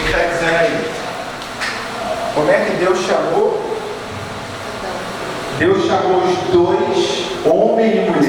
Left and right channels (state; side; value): identical; both; correlation 1.00